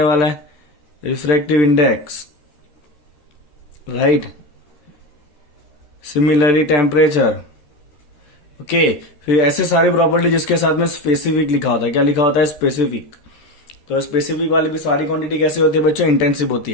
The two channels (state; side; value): late; right; 13 ms